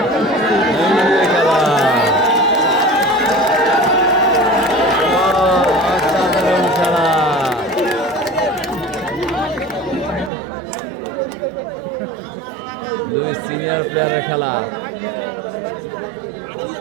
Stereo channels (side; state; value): left; drops out; at 10.3 s